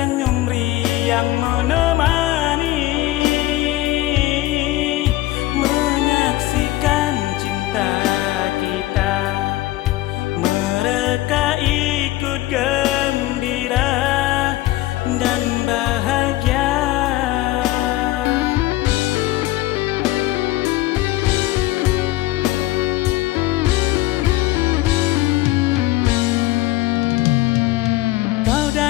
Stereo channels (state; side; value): quieter; right; 17.0 dB